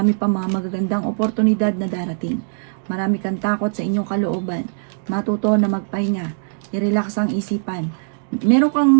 pa mga magagandang oportunidad na darating. Marami kang takot sa inyong kalooban. Matuto na magpahinga. I-relax ang isipan. Meron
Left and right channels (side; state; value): left; silent; digital silence